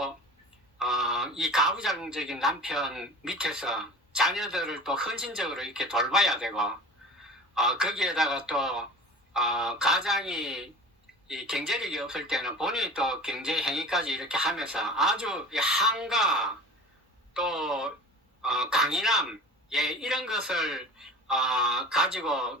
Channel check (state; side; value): normal; both; correlation 0.38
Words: 이 가부장적인 남편 밑에서 자녀들을 또 헌신적으로 이렇게 돌봐야 되고 거기에다가 또 가장이 이 경제력이 없을 때는 본인이 또 경제 행위까지 이렇게 하면서 아주 한가 또 강인함 예, 이런 것을